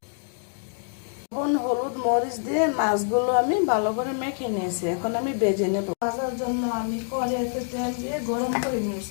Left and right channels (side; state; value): right; silent; digital silence